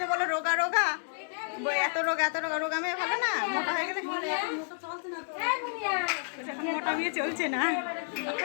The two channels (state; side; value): silent; right; digital silence